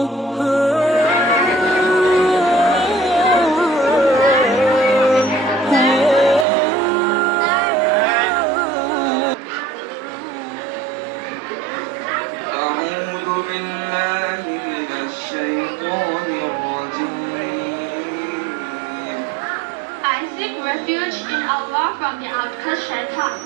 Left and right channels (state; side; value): drops out; left; at 6.5 s